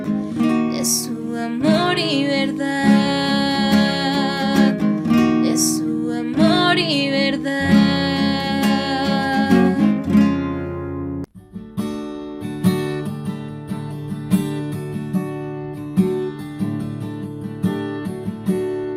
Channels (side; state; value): both; identical; correlation 1.00